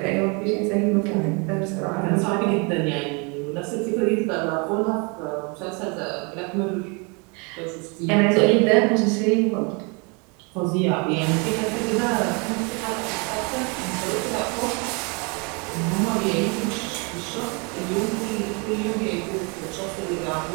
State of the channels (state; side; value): quieter; left; 32.1 dB